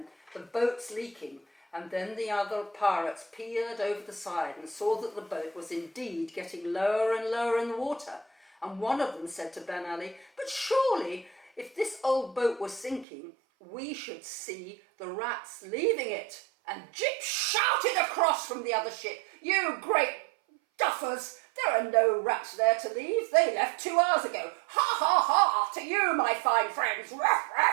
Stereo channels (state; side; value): drops out; left; at 13.1 s